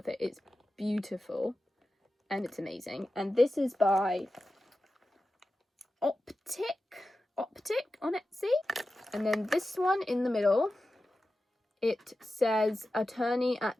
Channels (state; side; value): normal; both; correlation 0.93